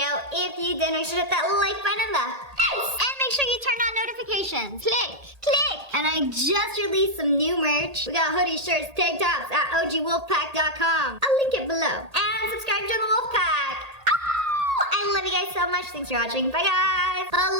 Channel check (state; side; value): late; left; 1.8 ms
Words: If you did, make sure to hit that like button in the face. And make sure you turn on notifications. Click. And I just released some new merch. We got hoodies, shirts, tank tops at ogwolfpack.com. I'll link it below. And subscribe to the Wolfpack. I love you guys so much. Thanks for watching. Bye, guys.